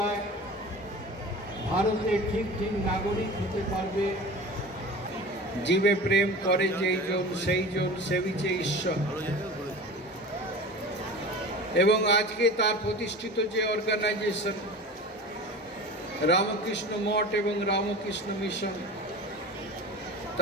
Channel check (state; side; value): normal; both; correlation 0.35